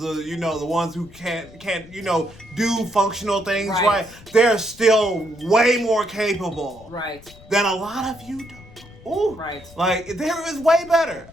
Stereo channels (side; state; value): left; noise; rumble, 21 dB below the sound